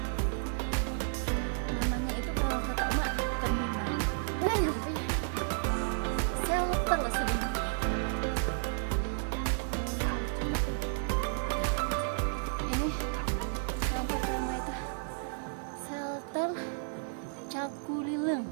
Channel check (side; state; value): left; silent; digital silence